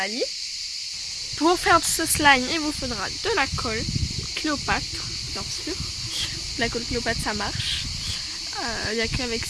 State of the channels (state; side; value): identical; both; correlation 1.00